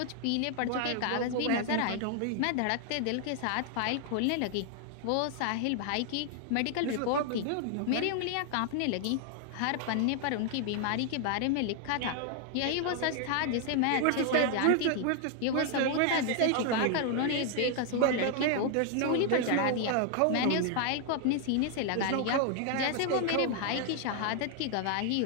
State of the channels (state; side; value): different; both; correlation 0.00